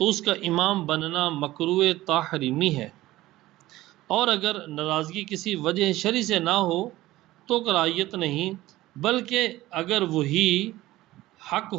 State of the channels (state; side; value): quieter; left; 16.8 dB